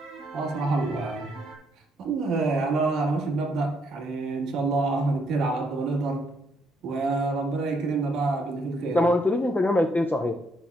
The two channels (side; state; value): both; normal; correlation 0.73